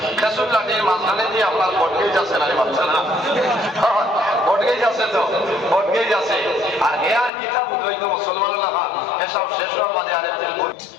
লাঠির মাঝখানে দিয়ে আপনার বটগেজ আছে না বাচ্চা না বটগেজ আছে তো বটগেজ আছে আর হে আর কিতাব উদ্বৈত মুসলমান লেখা এসব শেষ হওয়ার বাদে আরেকদিন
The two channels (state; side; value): drops out; right; at 7.3 s